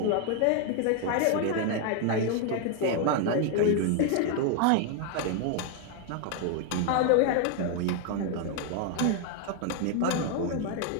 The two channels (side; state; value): both; different; correlation 0.00